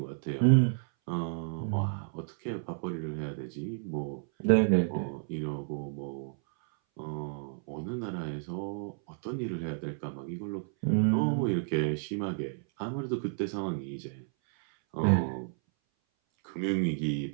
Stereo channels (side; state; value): left; silent; 57 dB below the other